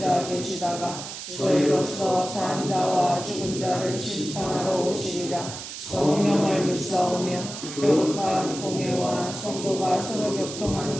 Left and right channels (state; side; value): noise; right; hiss, 9 dB below the sound